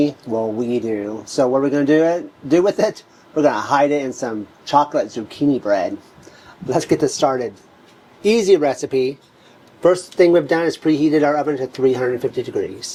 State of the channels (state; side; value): identical; both; correlation 1.00